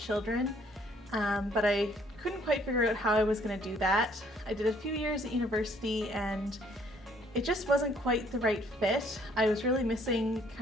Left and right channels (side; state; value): both; normal; correlation 0.63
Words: but I couldn't quite figure out how I was going to do that. I did a few years at university and it just wasn't quite the right fit. I was really missing